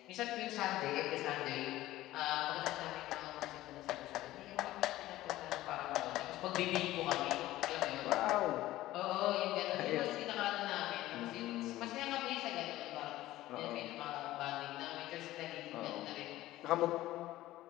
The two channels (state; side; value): quieter; right; 15.8 dB